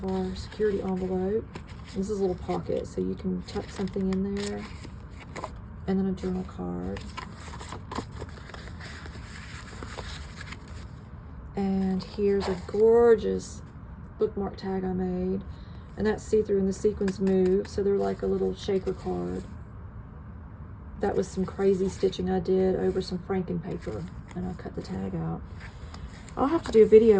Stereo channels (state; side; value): identical; both; correlation 1.00